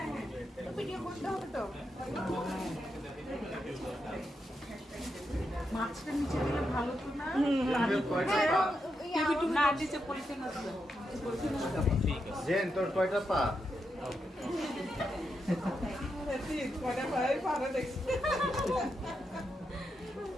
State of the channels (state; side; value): normal; both; correlation 0.84